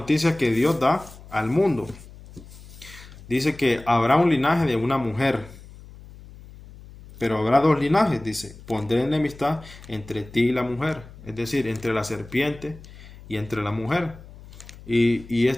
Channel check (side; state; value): left; noise; hum, 19 dB below the sound